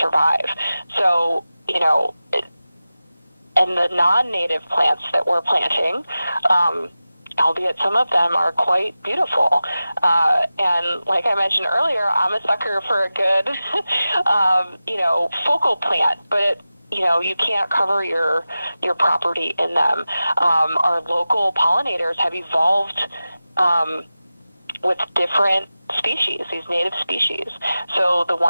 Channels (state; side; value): inverted; both; correlation -0.95